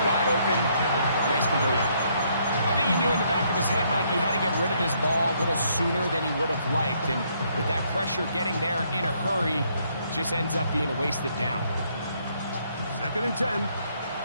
wide open, nice conversion. I think he knew in the back of his head, Mike, he had to get rid of this ball a little sooner than he would have liked. And with that pressure getting there in a hurry, just ends up being a wasted down. 2nd and 10.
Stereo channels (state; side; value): inverted; both; correlation -0.70